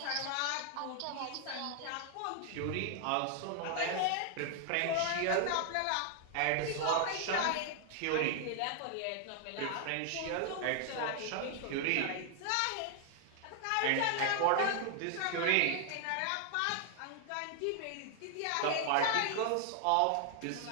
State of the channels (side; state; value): both; different; correlation 0.00